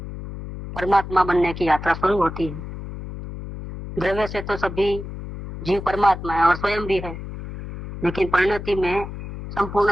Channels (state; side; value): noise; left; hum, 10 dB below the sound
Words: परमात्मा बनने की यात्रा शुरू होती है। द्रव्य से तो सभी जीव परमात्मा है और स्वयं भी है, लेकिन परिणति में